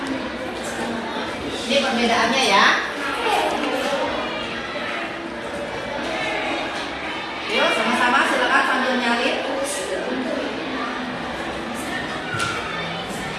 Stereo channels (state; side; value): identical; both; correlation 1.00